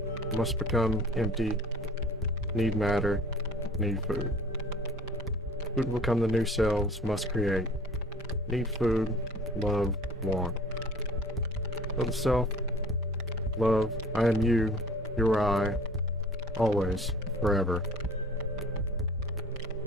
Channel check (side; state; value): both; normal; correlation 0.47